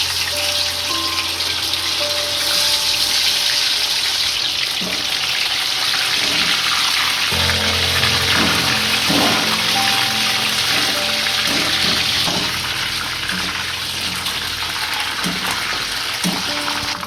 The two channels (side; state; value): both; identical; correlation 1.00